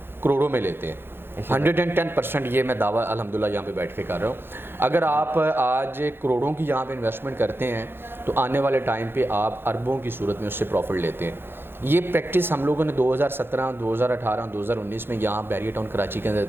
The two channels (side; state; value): left; late; 0.10 ms